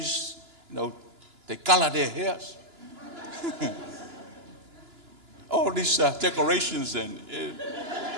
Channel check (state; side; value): late; left; 2.9 ms